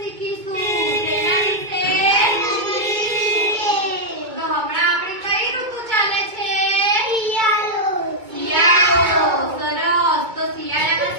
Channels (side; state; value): left; late; 2.2 ms